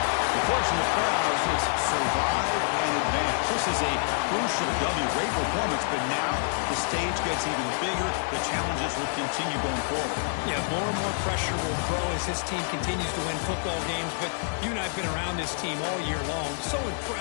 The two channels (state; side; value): silent; right; 60 dB below the other